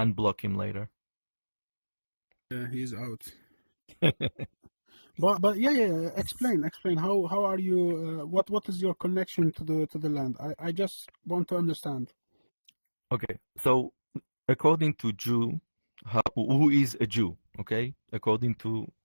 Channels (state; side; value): inverted; both; correlation -1.00